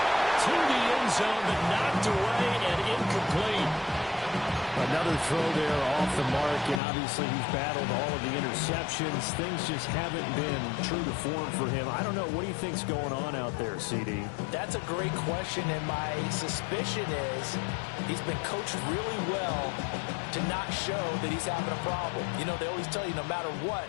To the end zone, but knocked away and incomplete. Another throw there off the mark, and obviously he's battled all of the interceptions. Things just haven't been true to form for him. I don't know. What do you think's going on out there, CD? That's a great question, and my suspicion is he's been coached really well to not show that he's having a problem. You know, they always tell you no matter what,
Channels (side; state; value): right; drops out; at 6.8 s